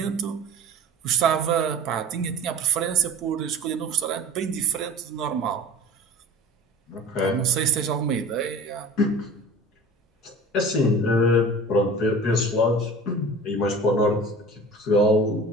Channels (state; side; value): normal; both; correlation 0.40